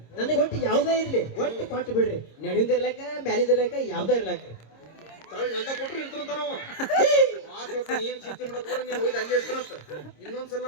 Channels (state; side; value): late; right; 26 ms